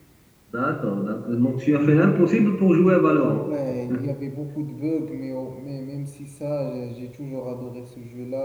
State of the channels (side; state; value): both; identical; correlation 1.00